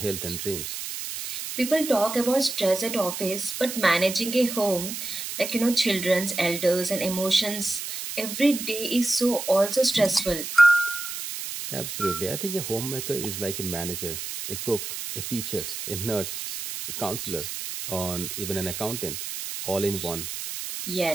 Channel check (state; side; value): noise; right; hiss, 6 dB below the sound